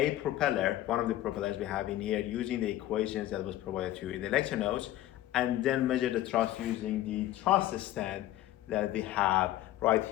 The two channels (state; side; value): quieter; right; 14.2 dB